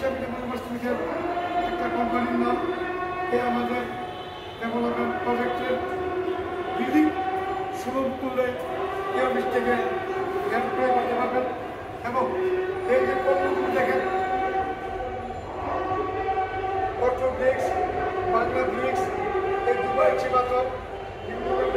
ডেভেলপার্স একটা কোম্পানির নাম। আমাদের ডেভেলপমেন্ট প্রজেক্টের বিল্ডিং সুলভ মূল্যে এই অফিস থেকে হেল্প করে করতে পারবেন। এবং এই যে পণ্যগুলো দেখেন, অটো ব্রিক্স, বাংলা ব্রিক্স, এই দুবাই চিবাতর, বিভিন্ন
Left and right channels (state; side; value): identical; both; correlation 1.00